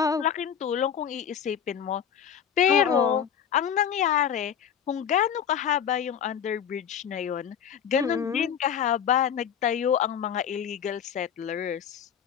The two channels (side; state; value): right; quieter; 8.4 dB